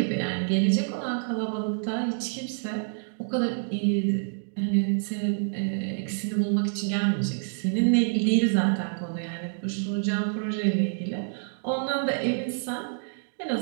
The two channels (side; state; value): left; silent; digital silence